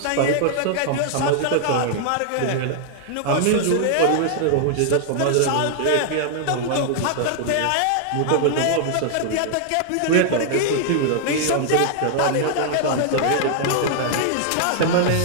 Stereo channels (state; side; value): different; both; correlation 0.00